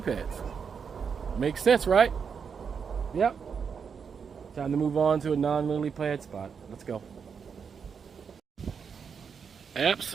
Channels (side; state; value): left; quieter; 6.4 dB